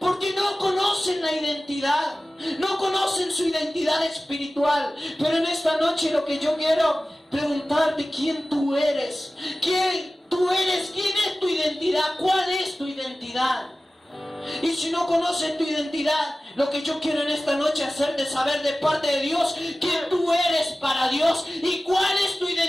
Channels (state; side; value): normal; both; correlation 0.96